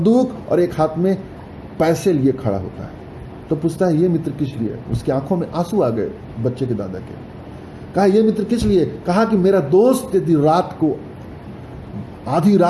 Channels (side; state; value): both; identical; correlation 1.00